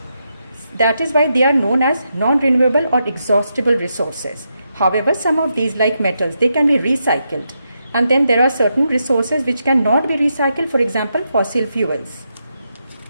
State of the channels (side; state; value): both; inverted; correlation -0.84